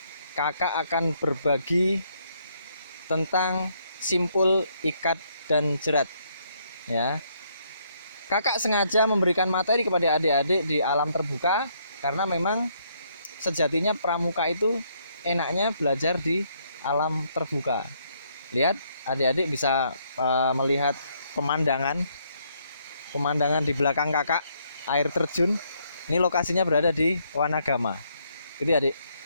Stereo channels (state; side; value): inverted; both; correlation -0.71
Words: kakak akan berbagi tentang simpul, ikat, dan jerat. Ya, kakak sengaja memberikan materi kepada adik-adik di alam terbuka karena memang sejatinya pramuka itu enaknya belajar di alam terbuka. Lihat, adik-adik bisa melihat pemandangan di belakang kakak, air terjun. Ini lokasinya berada di Wanagama. Gitu ya, adik.